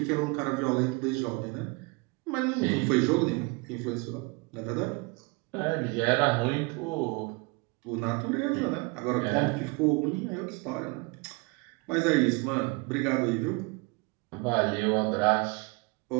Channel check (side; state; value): left; quieter; 27.6 dB